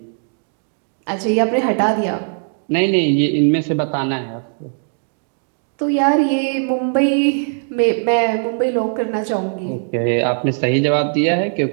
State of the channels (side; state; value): left; silent; digital silence